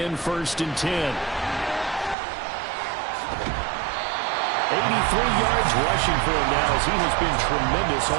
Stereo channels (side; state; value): left; drops out; at 2.1 s